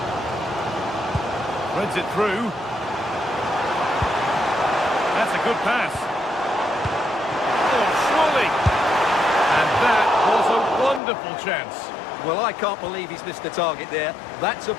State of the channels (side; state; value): right; drops out; at 11.0 s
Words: Threads it through. That's a good pass. Oh, surely. And that was a wonderful chance. Well, I can't believe he's missed the target there. That's a